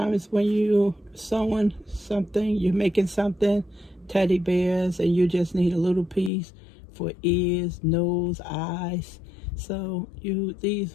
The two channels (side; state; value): right; drops out; at 6.3 s